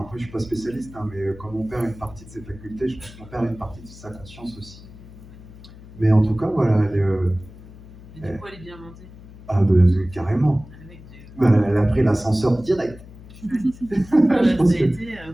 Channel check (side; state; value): left; noise; hum, 18 dB below the sound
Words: après, je ne suis pas spécialiste, hein, mais quand on perd une partie de ses facultés, je pense qu'on perd une partie de sa conscience aussi. Mais en tout cas, voilà, Et du coup, elle est bien montée. Ah, ben, carrément. Ben, elle a pris l'ascenseur direct. Ça a été